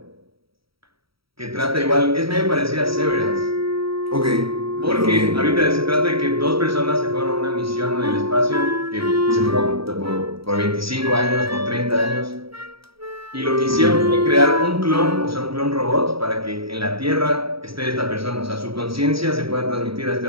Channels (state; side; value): late; left; 0.75 ms